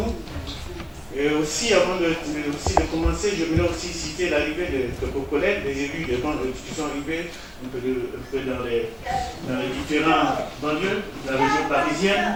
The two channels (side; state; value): both; identical; correlation 1.00